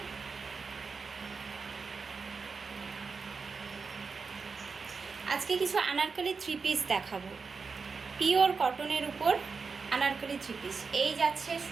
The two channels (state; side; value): quieter; left; 4.9 dB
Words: আজকে কিছু আনারকলি থ্রি পিস দেখাবো, পিওর কটনের উপর আনারকলি থ্রি পিস। এই যাচ্ছে